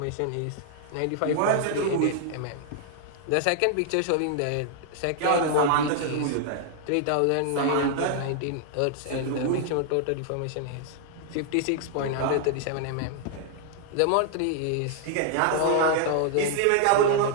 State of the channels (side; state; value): both; different; correlation -0.01